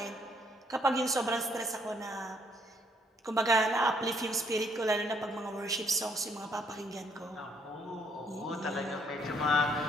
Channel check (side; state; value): both; normal; correlation 0.68